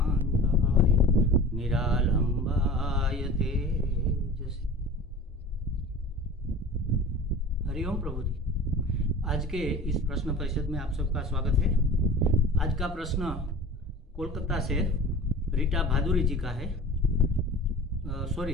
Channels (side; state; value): both; normal; correlation 0.39